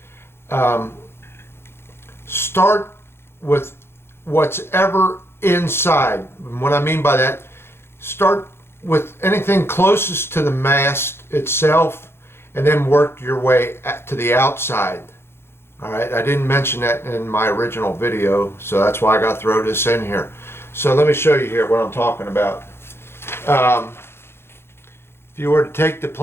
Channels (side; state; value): right; late; 0.12 ms